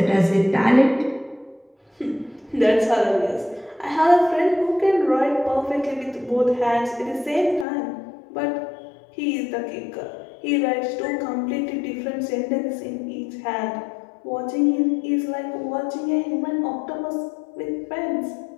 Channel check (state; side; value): drops out; right; at 7.7 s